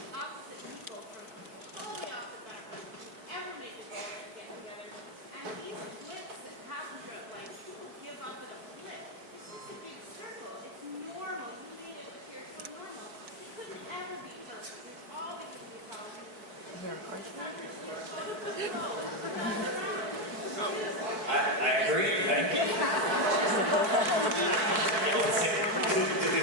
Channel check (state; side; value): late; left; 4.6 ms